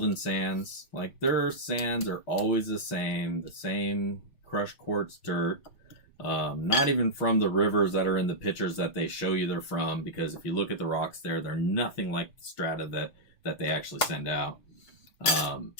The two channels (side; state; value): right; late; 6.2 ms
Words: Sands, like their sands are always the same crushed quartz dirt. Not even from the rivers that are in the pictures that they show you they're from, because if you look at the rocks there, they're nothing like the strata that they actually send out.